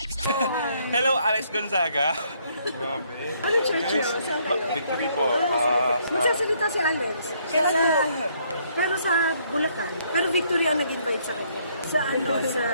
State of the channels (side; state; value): both; inverted; correlation -0.68